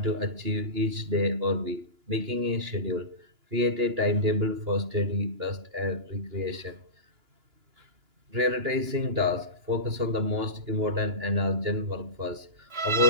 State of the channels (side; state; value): left; late; 2.9 ms